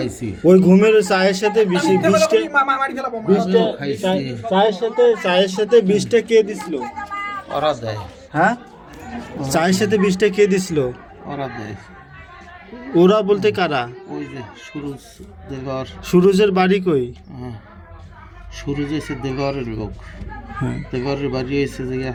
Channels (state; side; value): identical; both; correlation 1.00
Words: ওই ঘুমের চায়ের সাথে বিষটা মারি ফেলাবো। আমিও খাইছি। চায়ের সাথে বিষটা কে দিছিল? ওরা দেয়। হ্যাঁ, চায়ের সাথে বিষটা কে দিছিল? ওরা দেয়। ওরা বলতে কারা? ওই যে সুরজ দেলোয়ার। সুরজের বাড়ি কই? হ্যাঁ, সুরজ এসে দেলোয়ারের লোক। হ্যাঁ, দেলোয়ারের বাড়ি এসে যে